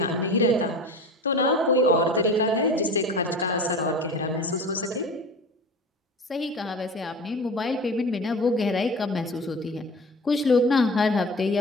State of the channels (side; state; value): both; normal; correlation 0.35